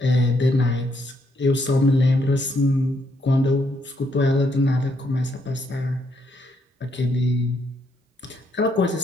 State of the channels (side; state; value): both; normal; correlation 0.74